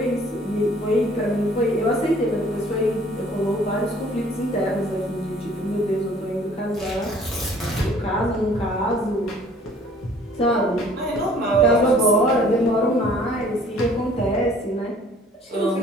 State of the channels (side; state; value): both; normal; correlation 0.55